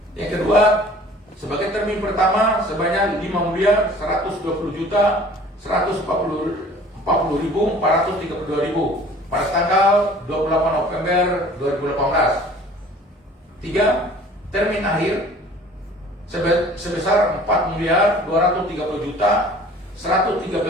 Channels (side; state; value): both; normal; correlation 0.49